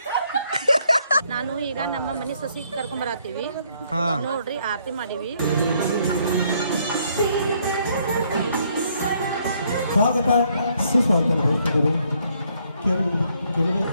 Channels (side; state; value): both; inverted; correlation -0.69